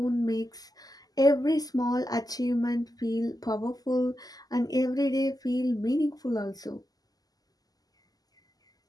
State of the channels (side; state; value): right; late; 0.18 ms